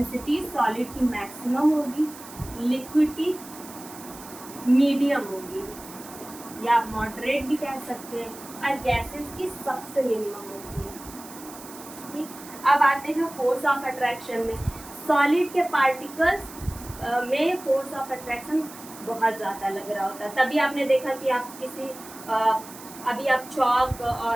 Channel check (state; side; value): noise; right; hiss, 16 dB below the sound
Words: सॉलिड की मैक्सिमम होगी, लिक्विड की मीडियम होगी, या मॉडरेट भी कह सकते हैं, और गैसेस की सबसे मिनिमम होती है। ठीक, अब आते हैं फोर्स ऑफ अट्रैक्शन में। सॉलिड के पार्टिकल्स में फोर्स ऑफ अट्रैक्शन बहुत ज़्यादा लग रहा होता है। तभी आपने देखा कि आप किसी अभी आप चॉक